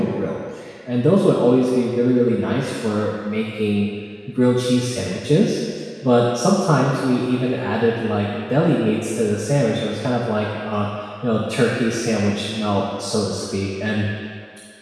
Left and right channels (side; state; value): both; identical; correlation 1.00